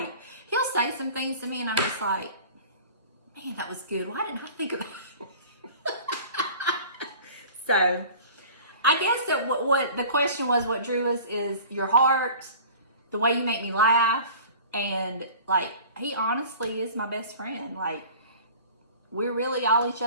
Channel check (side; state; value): both; inverted; correlation -0.43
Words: he'll say some things to me and I'm just like, man, that was good. Why didn't I think of that? So, I guess that what the question was, what drew us is your heart, the way you make me laugh, and like, he honestly is my best friend. Like, we're really all each